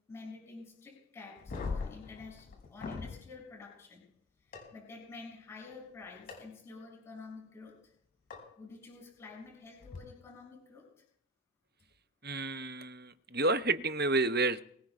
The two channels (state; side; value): normal; both; correlation 0.21